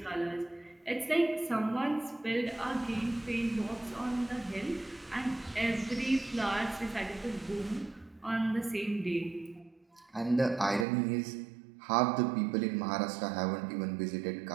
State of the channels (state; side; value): drops out; left; at 10.9 s